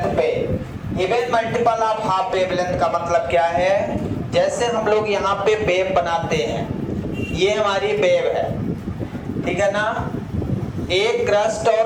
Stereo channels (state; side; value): identical; both; correlation 1.00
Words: पे। Even multiple of half wavelength का मतलब क्या है, जैसे हम लोग यहाँ पे वेव बनाते हैं, ये हमारी वेव है, ठीक है ना। एक क्रस्ट